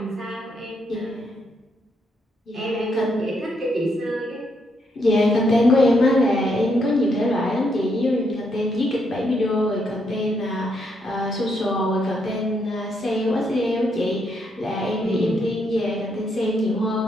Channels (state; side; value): normal; both; correlation 0.76